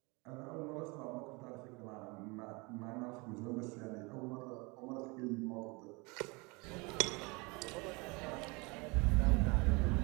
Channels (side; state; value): left; quieter; 27.4 dB